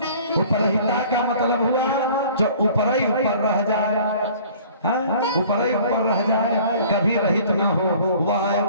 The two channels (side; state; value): both; inverted; correlation -0.50